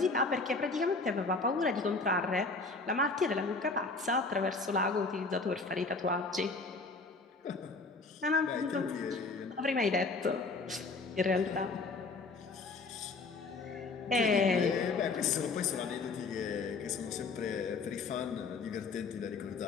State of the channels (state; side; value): quieter; right; 3.9 dB